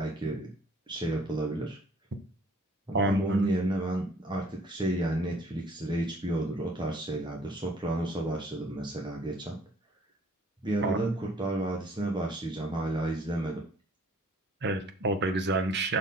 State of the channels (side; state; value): both; normal; correlation 0.56